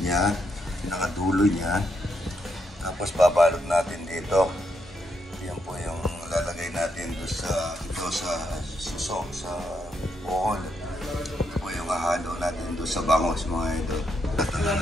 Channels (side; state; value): both; normal; correlation 0.79